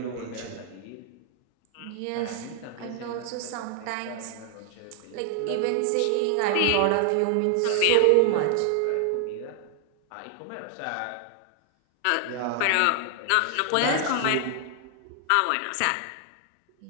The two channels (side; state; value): both; different; correlation 0.00